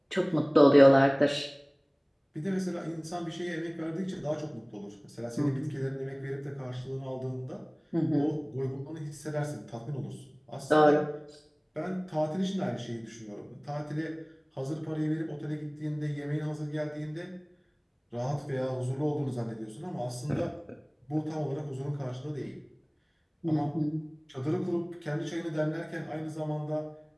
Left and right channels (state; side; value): identical; both; correlation 1.00